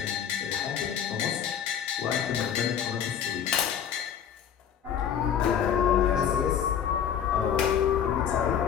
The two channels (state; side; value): quieter; right; 8.7 dB